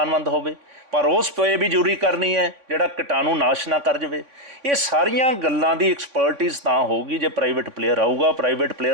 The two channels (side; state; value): left; late; 3.6 ms